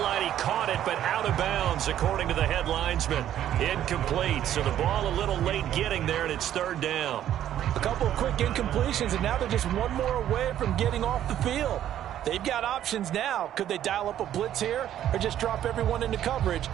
he caught it, but out of bounds, according to the head linesman. Incomplete, so the ball a little late getting there, and it's 3rd down. A couple of quick incompletions, and now they're just one more away from getting off the field. They've got options now. Could they dial up a blitz here, or just drop everyone into coverage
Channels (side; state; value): left; quieter; 11.4 dB